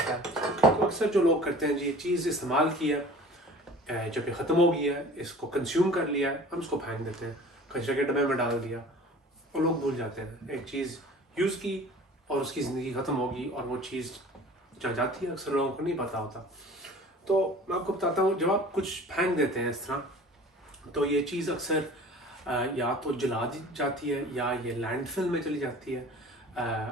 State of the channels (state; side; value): normal; both; correlation 0.44